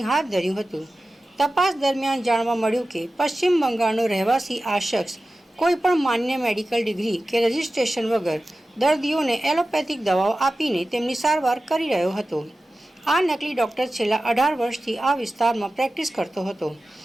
હાથ ધર્યું હતું। તપાસ દરમિયાન જાણવા મળ્યું કે પશ્ચિમ બંગાળનો રહેવાસી આ શખ્સ કોઈપણ માન્ય મેડિકલ ડિગ્રી કે રજિસ્ટ્રેશન વગર દર્દીઓને એલોપેથિક દવાઓ આપીને તેમની સારવાર કરી રહ્યો હતો। આ નકલી ડૉક્ટર છેલ્લા 18 વર્ષથી આ વિસ્તારમાં પ્રેક્ટિસ કરતો હતો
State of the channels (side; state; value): both; normal; correlation 0.95